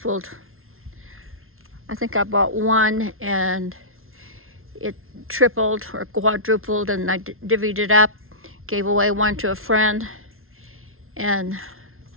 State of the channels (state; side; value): late; left; 0.61 ms